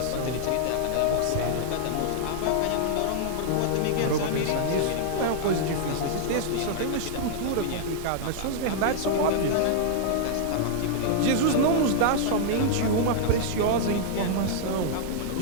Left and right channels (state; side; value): different; both; correlation -0.01